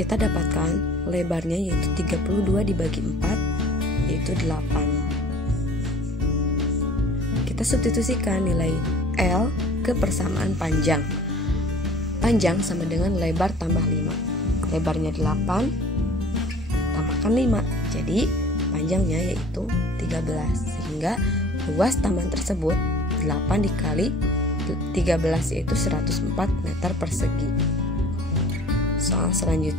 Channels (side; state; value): both; normal; correlation 0.49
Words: dapatkan lebarnya yaitu 32 dibagi 4 yaitu 8. Kita substitusikan nilai L ke persamaan panjang. Panjang sama dengan lebar tambah 5. Lebarnya 8 tambahkan 5. Jadi panjangnya yaitu 13. Sehingga luas taman tersebut 8 dikali 13 yaitu 104 meter persegi. Soal